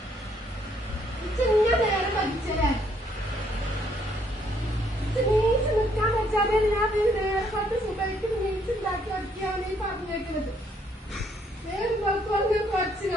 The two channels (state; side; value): normal; both; correlation 0.68